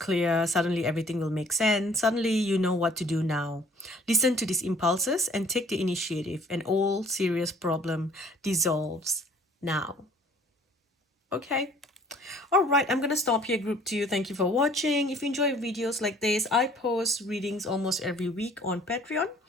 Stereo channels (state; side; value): normal; both; correlation 0.55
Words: Suddenly everything will make sense. Suddenly you know what to do now. Listen to these impulses and take the initiative, and all serious problem dissolves now. Okay. All right, I'm gonna stop here, group 2. Thank you for watching. If you enjoy videos like this, I post readings almost every week on Patreon.